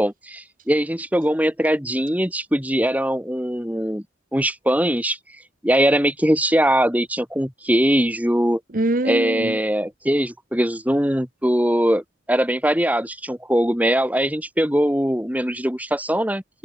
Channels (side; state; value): both; normal; correlation 0.85